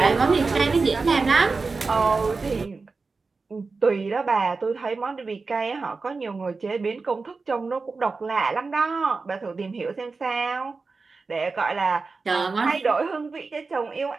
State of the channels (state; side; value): quieter; left; 4.2 dB